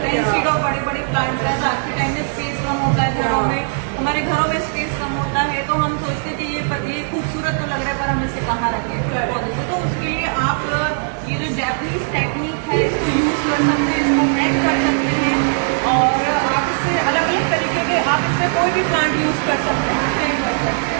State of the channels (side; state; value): left; silent; 67 dB below the other